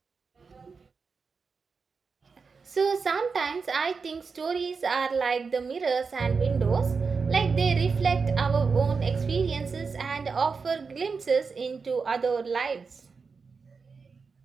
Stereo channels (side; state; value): left; quieter; 5.0 dB